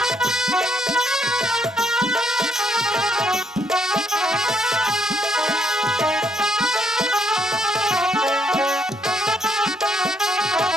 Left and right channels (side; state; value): both; normal; correlation 0.72